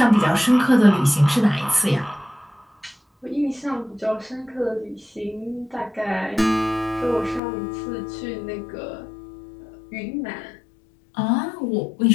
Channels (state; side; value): drops out; right; at 7.4 s